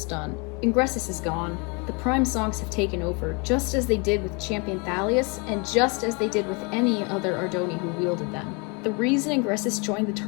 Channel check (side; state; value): right; quieter; 31.7 dB